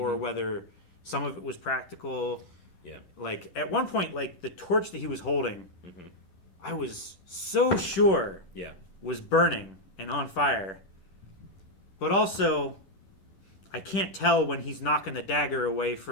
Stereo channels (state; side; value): late; right; 10 ms